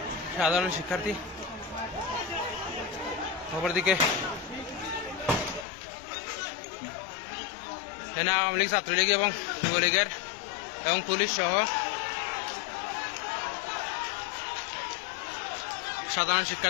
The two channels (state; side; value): drops out; right; at 5.7 s